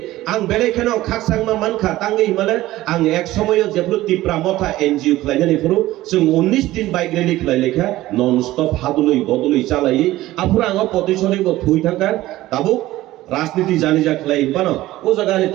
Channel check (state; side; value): quieter; left; 16.3 dB